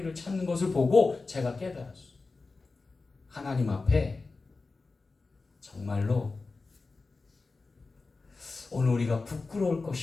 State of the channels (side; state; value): right; quieter; 3.9 dB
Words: 찾는 것을 보고 제가 깨달았어요. 하나님 앞에 정말로 오늘 우리가 부끄러울